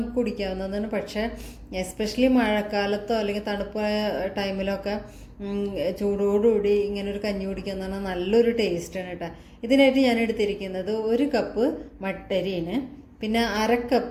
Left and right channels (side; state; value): both; identical; correlation 1.00